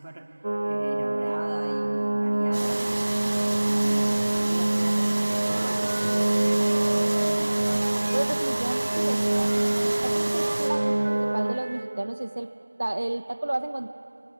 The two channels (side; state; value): both; inverted; correlation -1.00